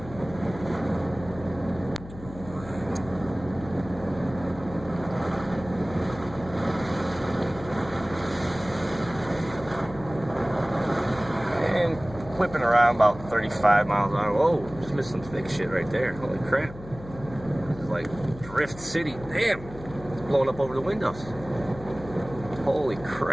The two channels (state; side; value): noise; left; hum, 15 dB below the sound